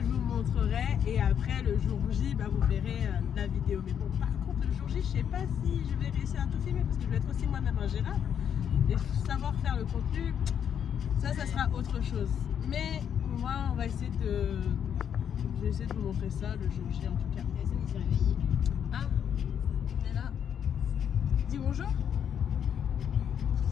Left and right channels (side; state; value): right; quieter; 8.5 dB